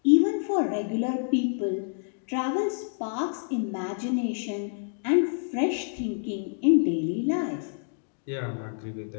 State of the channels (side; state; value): right; silent; digital silence